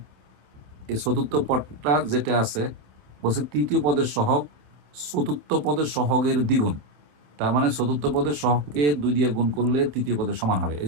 এই চতুর্থ পদটা যেটা আছে, বলছে তৃতীয় পদের সহগ চতুর্থ পদের সহগের দ্বিগুণ, তার মানে চতুর্থ পদের সহগকে 2 দিয়ে গুণ করলে তৃতীয় পদের সমান হবে,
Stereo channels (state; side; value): late; left; 27 ms